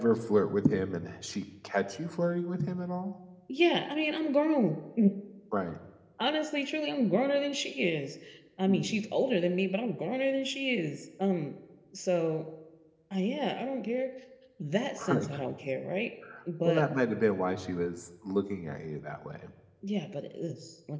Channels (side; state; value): both; identical; correlation 1.00